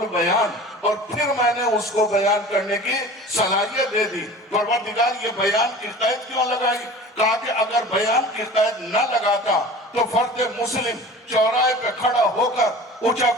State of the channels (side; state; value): both; normal; correlation 0.39